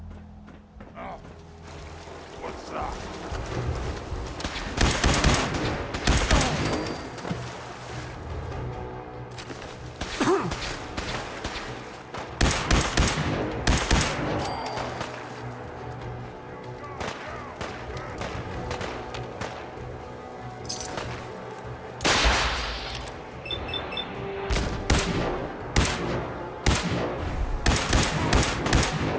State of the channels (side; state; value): both; identical; correlation 1.00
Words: Ah. What's that?